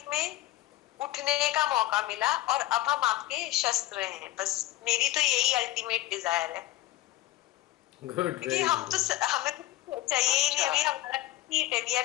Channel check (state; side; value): quieter; right; 16.3 dB